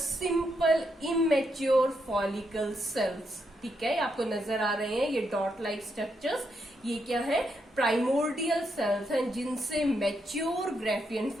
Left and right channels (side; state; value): both; normal; correlation 0.80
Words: immature follicle cells. ठीक है, आपको नजर आ रहे हैं ये डॉट लाइक स्ट्रक्चर्स. ये क्या है? प्राइमोर्डियल सेल्स हैं जिनसे मैच्योर ग्राफियन